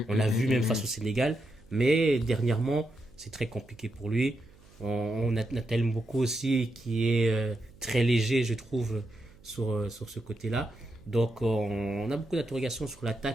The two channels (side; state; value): right; noise; hum, 26 dB below the sound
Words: On l'a vu même face au Sénégal. Mais dernièrement, c'est très compliqué pour lui. On a Nathaniel Mboko aussi qui est très léger, je trouve, sur ce côté-là. Donc, on a beaucoup d'interrogations sur